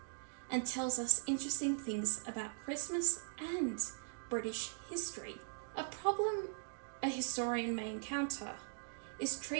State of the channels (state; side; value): silent; left; digital silence